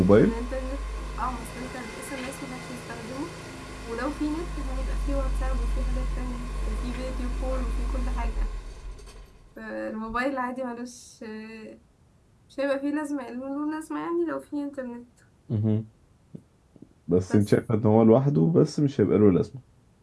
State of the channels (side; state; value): both; identical; correlation 1.00